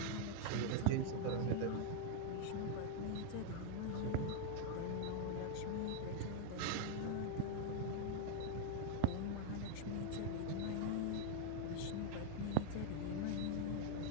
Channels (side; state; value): both; different; correlation 0.00